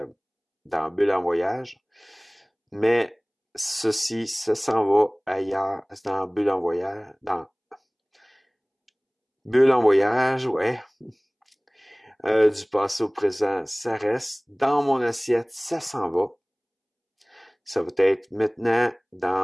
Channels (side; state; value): both; identical; correlation 1.00